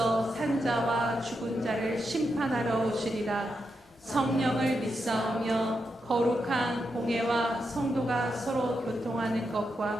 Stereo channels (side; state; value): both; normal; correlation 0.85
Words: 산자와 죽은 자를 심판하러 오시리라. 성령을 믿사오며 거룩한 공회와 성도가 서로 교통하는